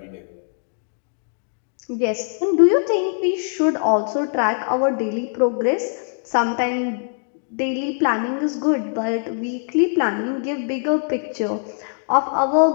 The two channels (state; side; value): silent; right; 59 dB below the other